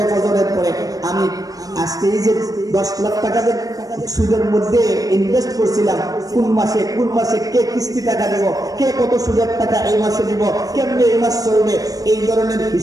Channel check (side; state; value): left; late; 0.18 ms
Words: ফজরের পরে আমি আজকে এই যে 10 লাখ টাকা সুদের মধ্যে ইনভেস্ট করছিলাম, কোন মাসে কে কিস্তি টাকা দেব, কে কত সুদের টাকা এই মাসে দিব, কেমনে এই মাস চলবে, এই ধরনের